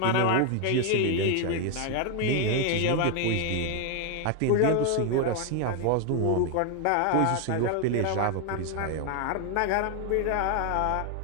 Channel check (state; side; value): different; both; correlation 0.01